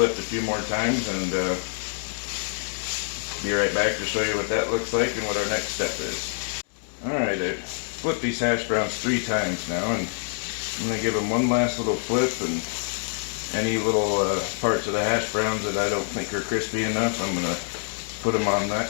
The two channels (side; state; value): right; silent; digital silence